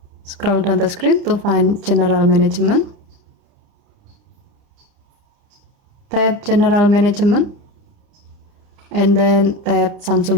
Scroll down the screen to find general management. Tap general management and then tap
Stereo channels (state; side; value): late; left; 29 ms